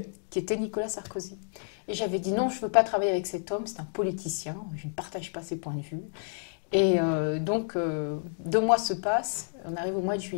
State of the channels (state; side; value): silent; right; digital silence